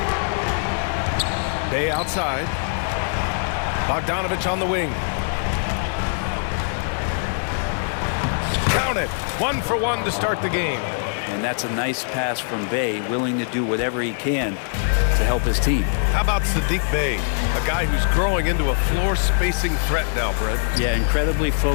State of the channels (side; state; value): right; silent; digital silence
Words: Bay outside. Bogdanovic on the wing. Count it. 1 for 1 to start the game. And that's a nice pass from Bay, willing to do whatever he can to help his team. How about Sadiq Bey, a guy who's growing into a floor spacing threat now, Brent? Yeah, incredibly